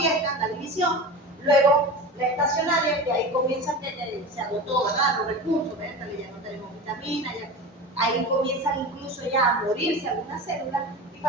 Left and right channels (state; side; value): normal; both; correlation 0.30